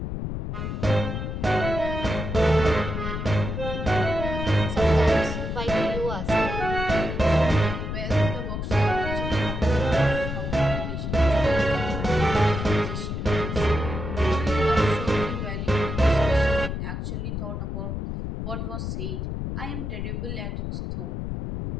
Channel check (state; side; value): noise; left; rumble, 4 dB below the sound